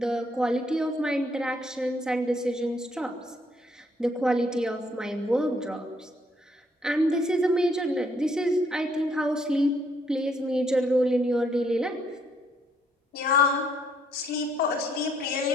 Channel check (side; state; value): both; normal; correlation 0.69